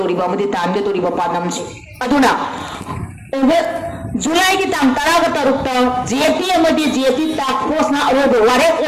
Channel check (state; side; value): identical; both; correlation 1.00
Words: मदि तानगे तोरिबा पानमसि अदुना जुलाई की तांग तरागा तरुक्ता जेपी अमदि जेपी टास्क फोर्स ना अरोबो वारे